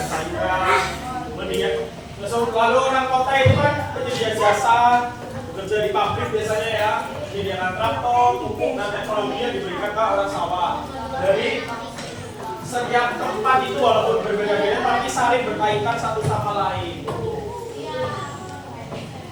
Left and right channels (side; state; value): both; identical; correlation 1.00